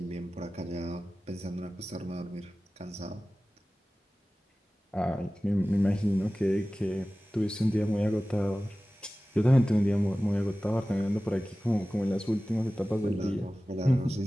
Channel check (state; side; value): normal; both; correlation 0.96